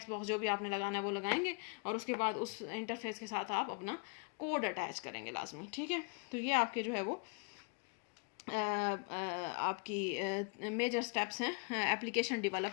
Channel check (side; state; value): right; quieter; 35.1 dB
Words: बॉक्स जो भी आपने लगाना है वो लगाएंगे, और उसके बाद उस इंटरफेस के साथ आप अपना कोड अटैच करेंगे लाजमी, ठीक है। तो ये आपके जो है वो आपकी मेजर स्टेप्स हैं एप्लीकेशन